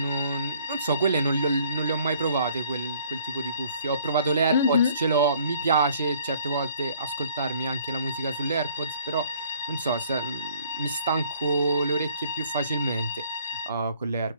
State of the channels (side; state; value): both; inverted; correlation -0.59